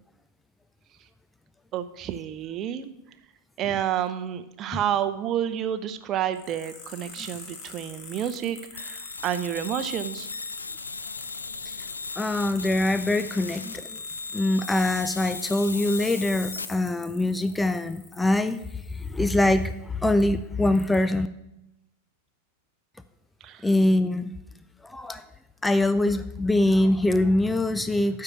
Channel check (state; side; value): normal; both; correlation 0.78